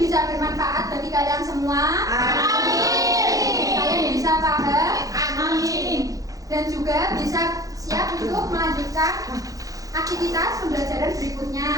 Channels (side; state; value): left; late; 0.17 ms